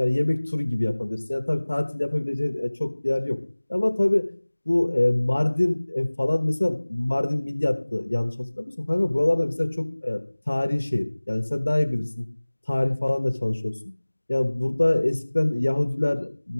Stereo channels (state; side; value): inverted; both; correlation -1.00